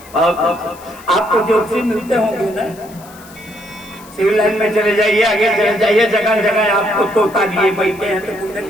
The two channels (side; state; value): left; noise; hiss, 22 dB below the sound